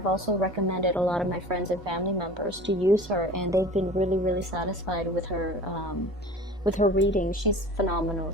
also recommended a lot of my friends and family members to use her, and they've been really, really satisfied with her reading. She's phenomenal,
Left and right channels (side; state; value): both; normal; correlation 0.40